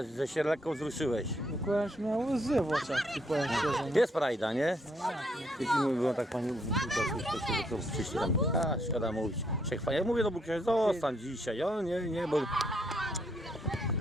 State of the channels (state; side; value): normal; both; correlation 0.72